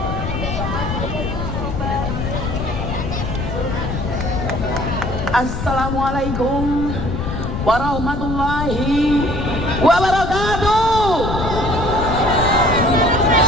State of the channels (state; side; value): noise; left; rumble, 4 dB below the sound